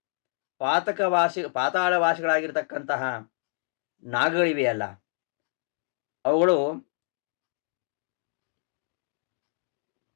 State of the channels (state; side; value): silent; right; digital silence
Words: ಪಾತಾಳವಾಸಿಗಳಾಗಿರ್ತಕ್ಕಂತಹ ನಾಗಗಳಿವೆಯಲ್ಲ, ಅವುಗಳು